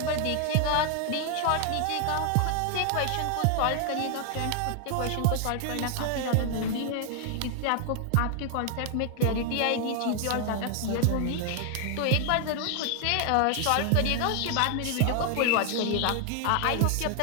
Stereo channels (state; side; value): different; both; correlation 0.00